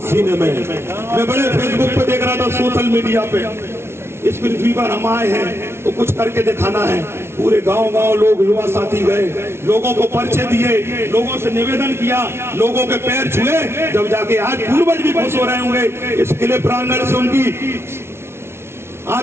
सीने में। मैं बड़े फेसबुक पे देख रहा था, सोशल मीडिया पे, इस पृथ्वी पर हम आए हैं तो कुछ करके दिखाना है। पूरे गांव लोग, युवा साथी गए, लोगों को परिचय दिए, लोगों से निवेदन किया, लोगों के पैर छुए, जब जाके आज पूर्वज भी खुश हो रहे होंगे इस किले प्रांगण से, उनकी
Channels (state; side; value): late; left; 0.12 ms